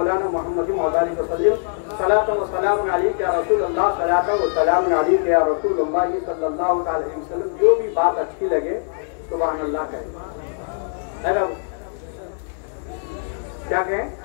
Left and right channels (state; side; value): silent; right; 64 dB below the other